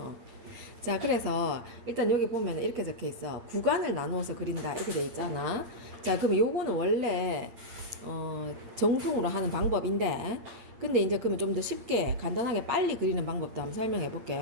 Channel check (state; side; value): late; left; 8.7 ms